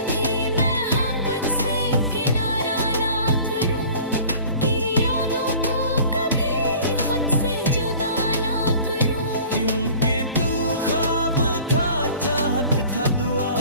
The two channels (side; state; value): both; inverted; correlation -0.46